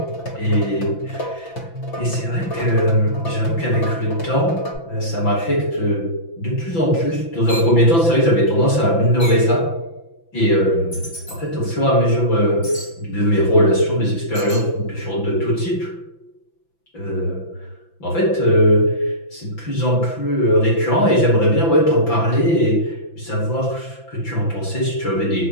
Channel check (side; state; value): right; late; 5.9 ms